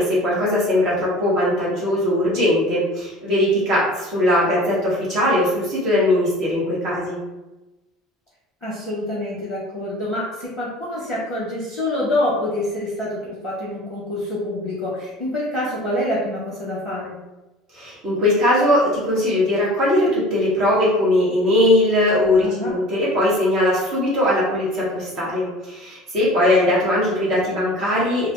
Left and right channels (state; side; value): normal; both; correlation 0.43